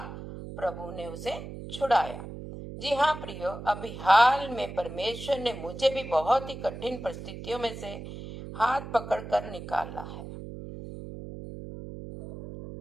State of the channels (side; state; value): right; noise; hum, 10 dB below the sound